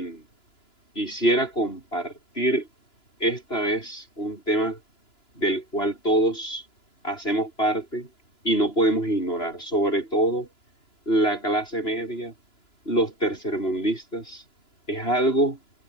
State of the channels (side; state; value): right; late; 2.9 ms